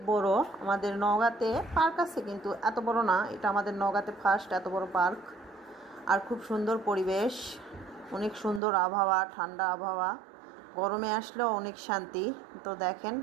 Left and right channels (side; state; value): left; drops out; at 8.6 s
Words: বড়। আমাদের নওগাঁতে পার্ক আছে কিন্তু এত বড় না, এটা আমাদের নওগাঁতে ফার্স্ট এত বড় পার্ক। আর খুব সুন্দর পরিবেশ, অনেক সুন্দর আবহাওয়া, ঠান্ডা আবহাওয়া, গরমে আসলেও অনেক শান্তি। তো দেখেন